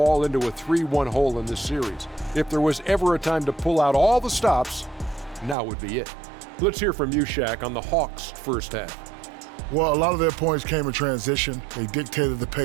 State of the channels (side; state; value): left; drops out; at 5.6 s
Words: into a 3-1 hole in this series. If there was ever a time to pull out all the stops, now would be it. Let's hear from you, Shaq, on the Hawks' first half. Well, a lot of their points came in transition. They dictated the